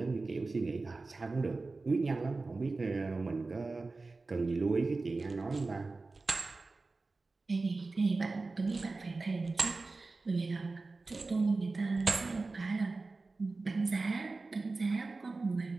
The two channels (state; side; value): quieter; left; 3.6 dB